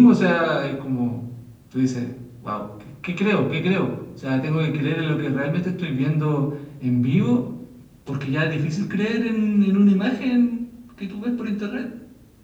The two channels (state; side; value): identical; both; correlation 1.00